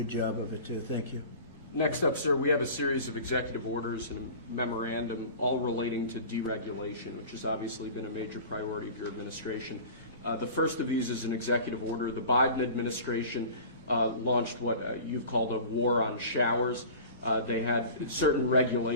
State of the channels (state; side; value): inverted; both; correlation -0.39